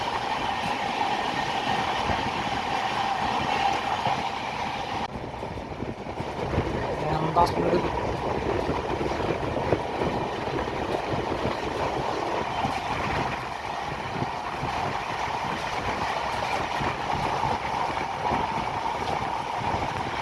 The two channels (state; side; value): identical; both; correlation 1.00